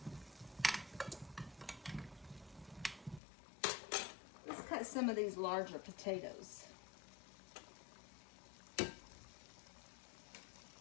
Let's cut some of these larger potatoes.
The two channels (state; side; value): drops out; right; at 3.2 s